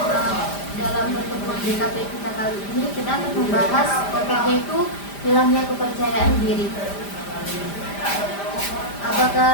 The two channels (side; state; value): right; late; 5.0 ms